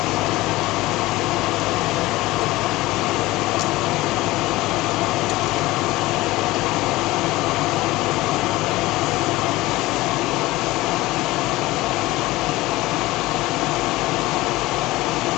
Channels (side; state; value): right; quieter; 18.8 dB